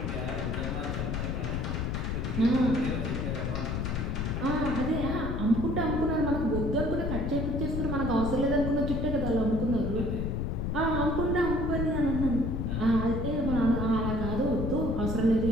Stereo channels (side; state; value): left; noise; rumble, 1 dB below the sound